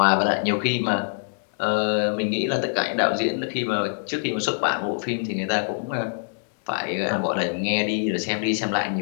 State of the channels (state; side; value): silent; right; 62 dB below the other